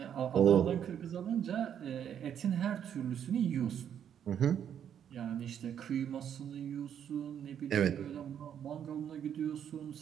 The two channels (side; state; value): left; quieter; 9.0 dB